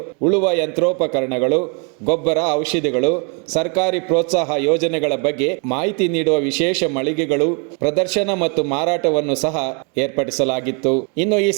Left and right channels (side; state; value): left; quieter; 35.8 dB